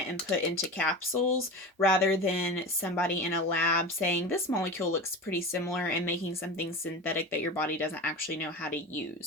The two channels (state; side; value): normal; both; correlation 0.29